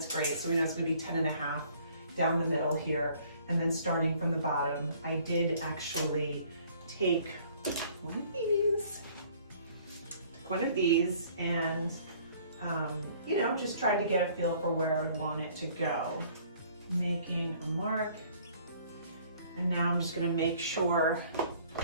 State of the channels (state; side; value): inverted; both; correlation -0.57